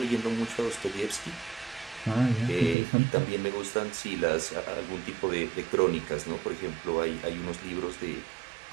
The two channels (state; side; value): drops out; left; at 2.8 s